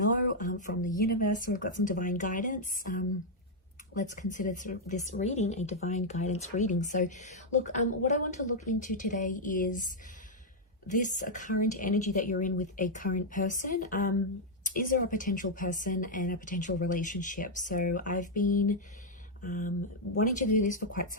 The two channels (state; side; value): normal; both; correlation -0.02